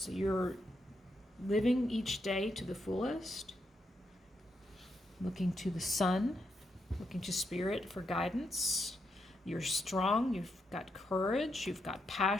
you're living each day to the fullest, looking to the sun, looking to spirit for guidance. You're strong. You've got courage. You've got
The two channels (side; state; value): both; normal; correlation 0.81